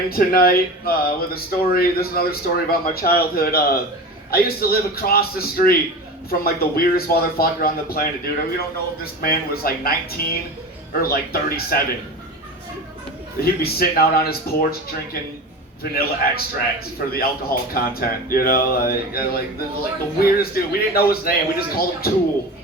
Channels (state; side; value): normal; both; correlation 0.30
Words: tonight with a story. This is another story about my childhood. I used to live across the street from like the weirdest motherfucker on the planet, dude. We don't know if this man was like 19 or like 37. He'd be sitting out on his porch drinking vanilla extracts for the alcohol content, you know, like the weirdest dude. We didn't know his name. We just called him Tool.